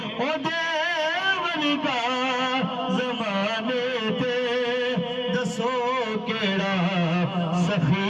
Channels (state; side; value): identical; both; correlation 1.00